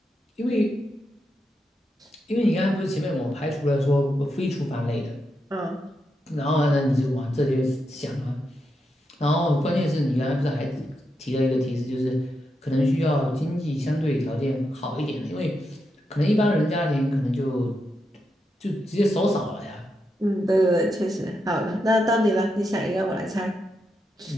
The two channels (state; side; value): normal; both; correlation 0.84